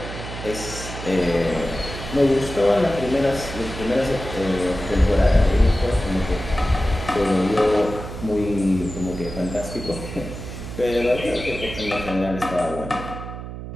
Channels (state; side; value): noise; right; hum, 9 dB below the sound